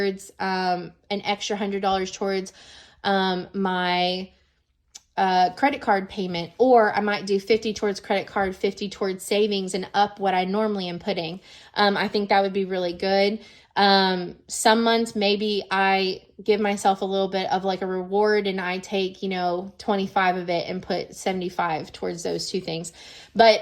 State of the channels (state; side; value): identical; both; correlation 1.00